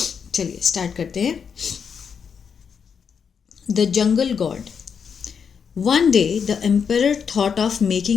चलिए स्टार्ट करते हैं। The Jungle God. One day, the emperor thought of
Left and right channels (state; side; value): quieter; right; 6.6 dB